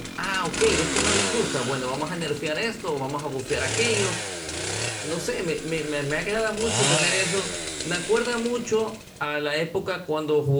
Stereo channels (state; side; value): identical; both; correlation 1.00